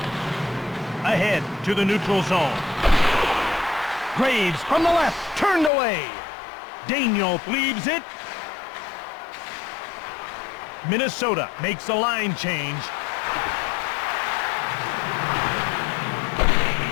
Ahead to the neutral zone. Graves from the left, turned away. Daniel leaves it. Minnesota makes a line change.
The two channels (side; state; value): right; drops out; at 5.7 s